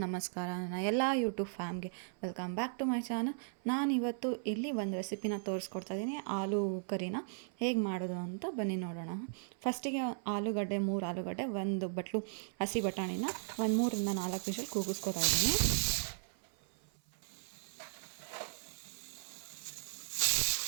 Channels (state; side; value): silent; left; 53 dB below the other